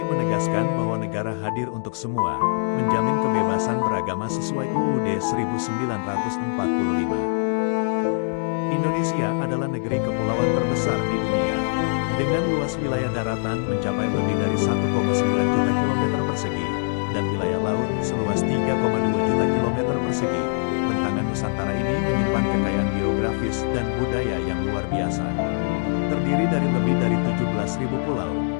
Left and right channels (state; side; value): silent; right; digital silence